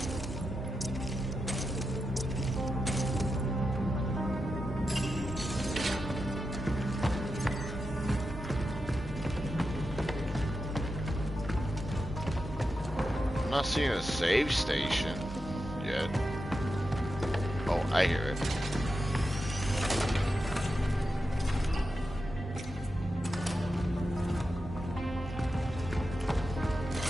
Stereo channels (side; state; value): both; normal; correlation 0.89